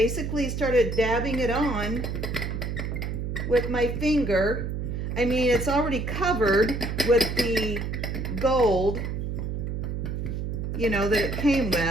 started dabbing it on with my finger. I mean, it's already covered with the gold, you know, that it came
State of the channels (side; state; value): right; noise; hum, 3 dB below the sound